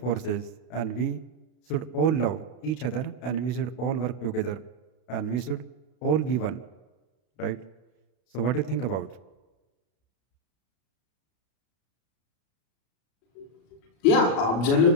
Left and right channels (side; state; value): right; late; 32 ms